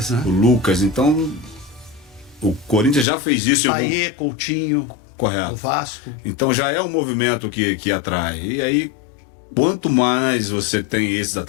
né? O Lucas. Então, o Corinthians já fez isso. Paê, Coutinho. Correto. O Vasco. Então já é um movimento que atrai. E aí, quanto mais você tem esses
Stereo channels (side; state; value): right; drops out; at 3.1 s